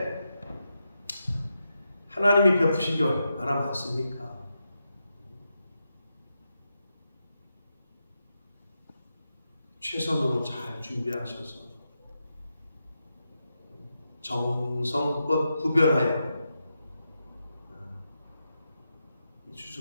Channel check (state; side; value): inverted; both; correlation -0.87